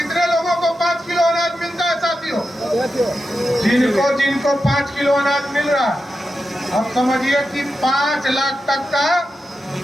लोगों को 5 किलो अनाज मिलता है साथियों? जिनको 5 किलो अनाज मिल रहा है, अब समझिए कि 5 लाख तक का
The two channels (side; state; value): both; normal; correlation 0.89